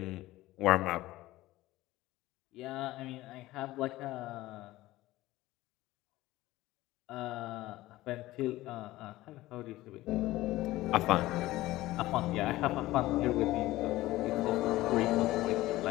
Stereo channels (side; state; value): right; quieter; 17.2 dB